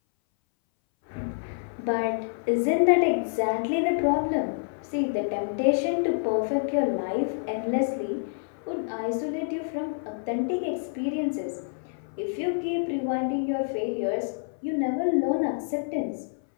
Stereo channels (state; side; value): silent; right; 60 dB below the other